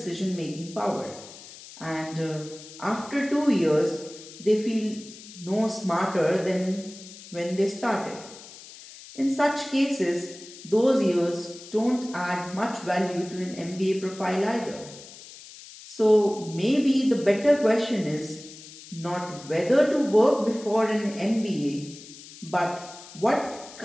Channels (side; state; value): left; noise; hiss, 17 dB below the sound